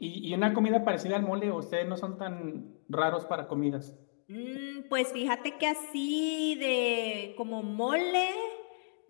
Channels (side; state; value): right; silent; digital silence